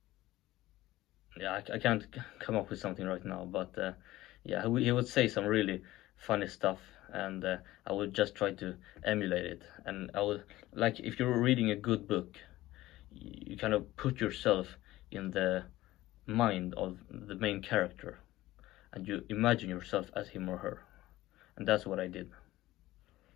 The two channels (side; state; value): right; quieter; 16.7 dB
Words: yeah, I can't come up with something right now, but yeah, he would say some really funny stuff, and I would just try to emulate it. And I would, like, if you're reading a good book, you kind of put yourself in the mind of the main character, and you imagine yourself as him or her, and that's what I did.